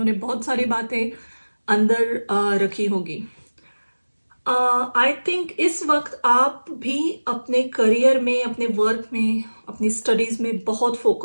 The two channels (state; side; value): inverted; both; correlation -1.00